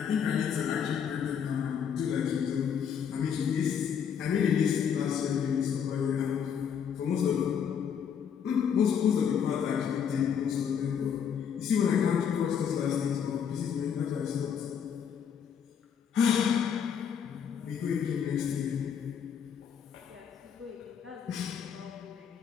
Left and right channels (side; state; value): right; quieter; 7.7 dB